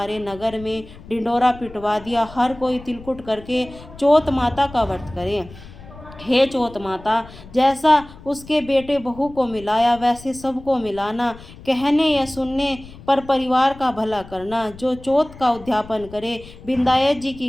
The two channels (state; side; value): noise; left; rumble, 18 dB below the sound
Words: नगर में ढिंडोरा पिटवा दिया, हर कोई तिलकुट करके चौथ माता का व्रत करे। हे चौथ माता, जैसा उसके बेटे बहू को मिलाया वैसे सबको मिलाना। कहने या सुनने पर परिवार का भला करना। जो चौथ का उद्यापन करे, विंदायक जी की